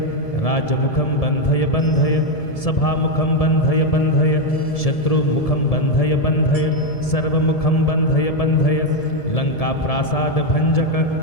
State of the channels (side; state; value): right; late; 1.7 ms